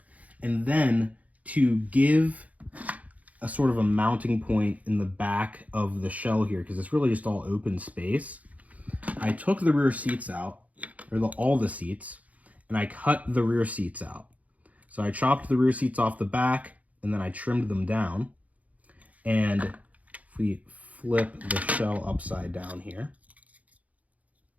And then to give a sort of a mounting point in the back of the shell here, because it's really just all open space, I took the rear seats out, or all the seats, and I cut the rear seats out. So I chopped the rear seats off the back and then I trimmed them down. And if we flip the shell upside down here,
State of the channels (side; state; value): left; late; 0.071 ms